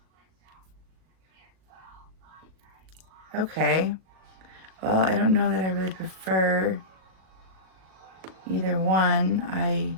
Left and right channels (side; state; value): left; late; 38 ms